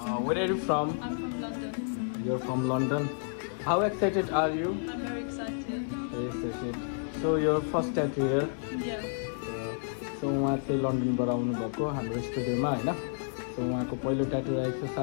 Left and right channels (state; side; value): silent; right; digital silence